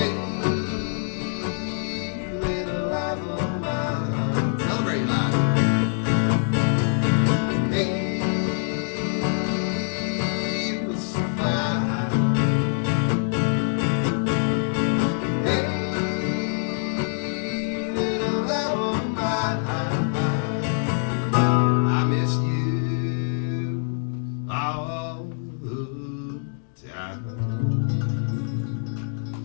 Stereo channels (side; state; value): right; silent; digital silence